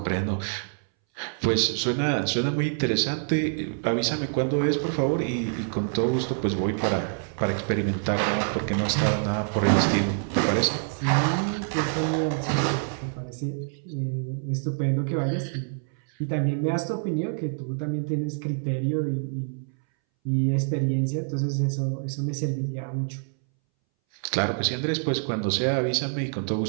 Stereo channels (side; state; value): left; silent; 61 dB below the other